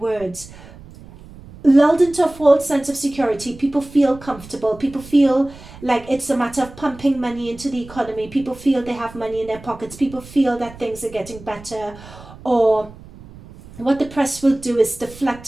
Lulled into a false sense of security, people feel comfortable, people feel like it's a matter of pumping money into the economy, people feel they have money in their pockets, people feel that things are getting better. Or what the press will do is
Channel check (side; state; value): right; noise; rumble, 19 dB below the sound